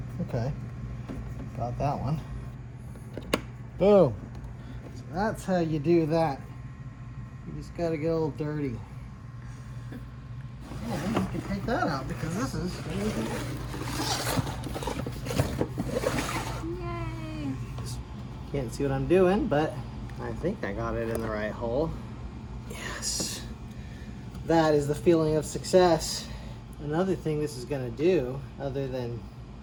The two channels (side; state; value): both; identical; correlation 1.00